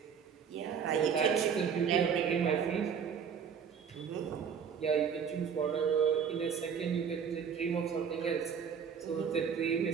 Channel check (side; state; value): left; quieter; 7.1 dB